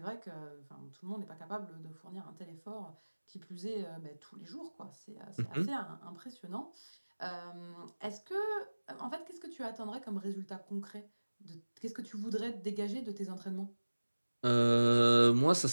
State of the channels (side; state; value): both; inverted; correlation -1.00